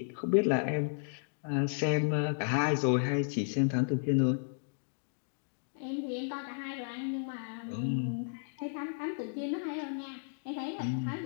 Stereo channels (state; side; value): silent; right; digital silence